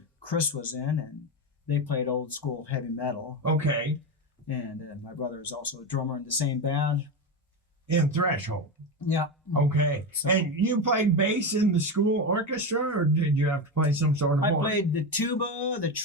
Chris was in, and they played old school heavy metal. Okay. And my brother is also a drummer in the same band. In Threshold? Yeah. Okay. So, and you played bass in the school orchestra, or did you have to play some sort of horn? I played the tuba, the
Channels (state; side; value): normal; both; correlation 0.16